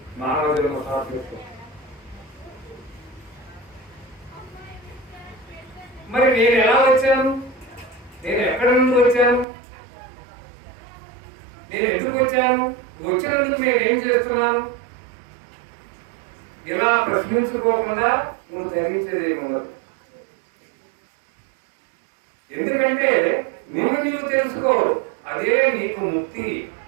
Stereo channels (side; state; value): left; drops out; at 9.5 s